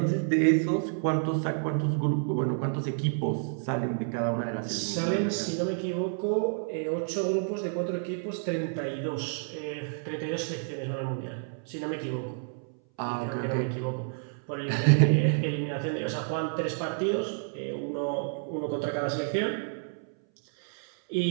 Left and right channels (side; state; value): left; silent; 58 dB below the other